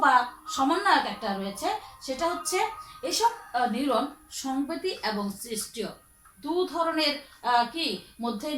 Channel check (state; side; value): identical; both; correlation 1.00